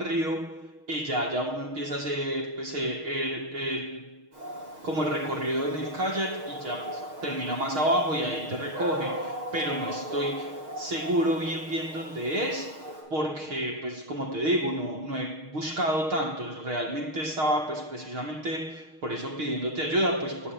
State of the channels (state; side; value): late; left; 6.4 ms